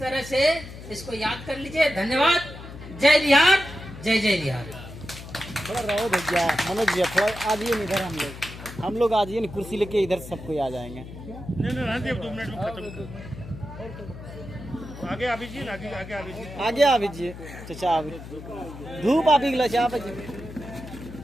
से इसको याद कर लीजिए। धन्यवाद। जय बिहार, जय जय बिहार। थोड़ा रहो भैया, मनोज भैया थोड़ा आ जाइए इधर, हम लोग आ जाइए ना, कुर्सी लेके इधर सबको आ जाएंगे। नहीं रहने अब 2 मिनट में खत्म। आगे आ दीजिए, आगे आगे आ दीजिए, आगे आ दीजिए चाचा, धूप आ गई चाचा।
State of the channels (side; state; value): left; noise; hum, 13 dB below the sound